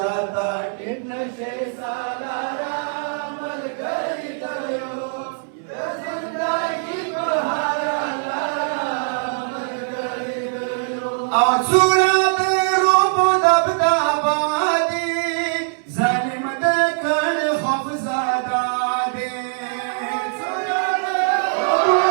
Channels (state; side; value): silent; left; 61 dB below the other